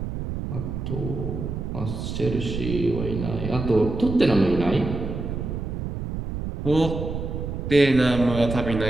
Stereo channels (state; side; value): noise; right; rumble, 5 dB below the sound